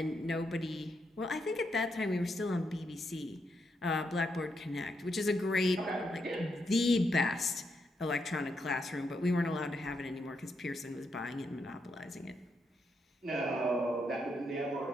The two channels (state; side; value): normal; both; correlation 0.80